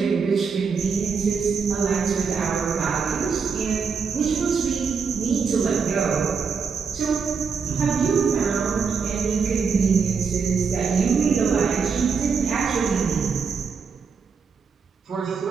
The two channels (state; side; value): quieter; left; 5.6 dB